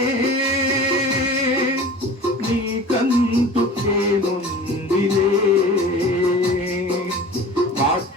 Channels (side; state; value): both; normal; correlation 0.39